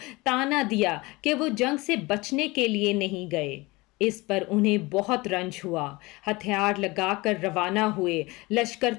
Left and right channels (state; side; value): quieter; right; 22.8 dB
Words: طعنہ دیا کہ وہ جنگ سے بچنے کے لیے نہیں گئے۔ اس پر انہیں بہت رنج ہوا، ہتھیار لگا کر روانہ ہوئے، لشکر